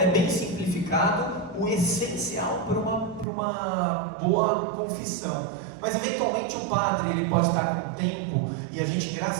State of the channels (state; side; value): drops out; left; at 3.2 s